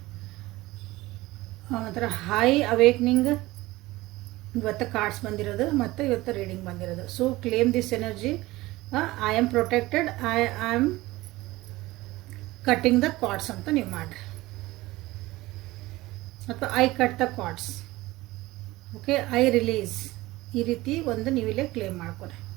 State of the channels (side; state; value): left; quieter; 19.0 dB